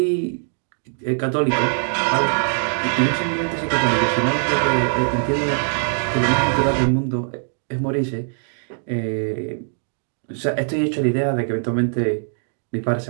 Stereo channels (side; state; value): left; silent; digital silence